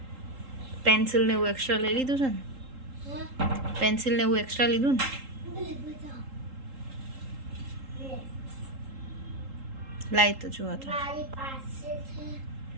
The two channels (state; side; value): late; left; 3.8 ms